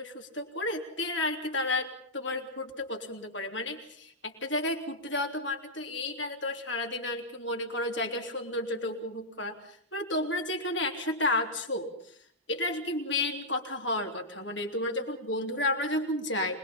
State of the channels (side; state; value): both; normal; correlation -0.08